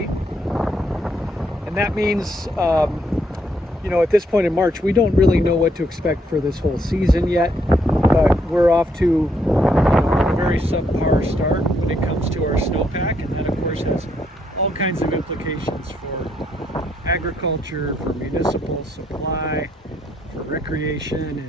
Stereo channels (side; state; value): both; normal; correlation 0.73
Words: And that means, at this point in March, we don't really know what to expect for this whole season yet, but we're off to a very subpar start when it comes to our snowpack, and that of course has all kinds of implications for agriculture, for municipal supply, for